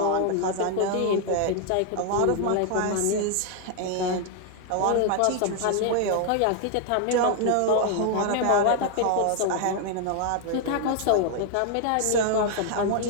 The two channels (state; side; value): different; both; correlation 0.00